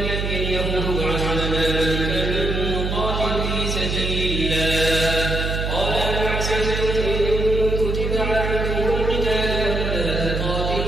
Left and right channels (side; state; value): right; noise; hum, 1 dB below the sound